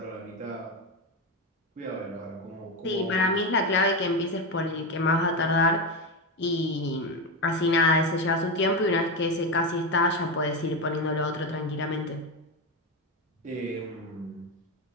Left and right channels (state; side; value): normal; both; correlation 0.13